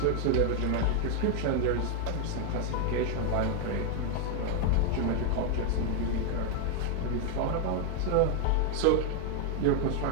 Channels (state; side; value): different; both; correlation 0.00